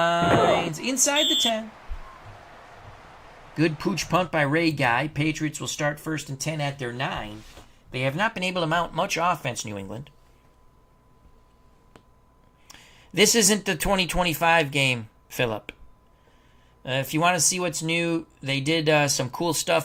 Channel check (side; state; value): both; identical; correlation 1.00